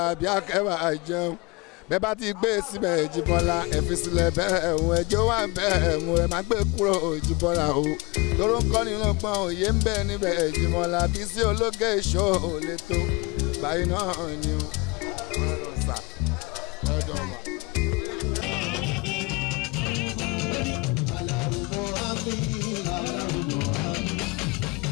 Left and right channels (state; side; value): quieter; right; 25.5 dB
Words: Akẹ́wà jẹun bẹ́ẹ̀ bá ti gbé síbẹ̀ Jíbọ́lá ẹ fi sílẹ̀ bẹ́ẹ̀ ẹ̀hún ẹjọ́ wà bẹ́ẹ̀ mú ẹ má gbé kúrò Jíbọ́lá o tóró ń kọ́ nínú pọ́n òye ń bẹ níbẹ̀ Jíbọ́lá Bísí Olókè Show lè tó báyìí náà ni o.